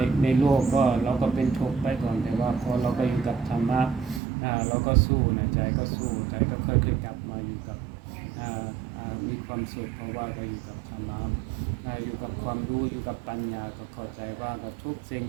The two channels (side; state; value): left; drops out; at 4.2 s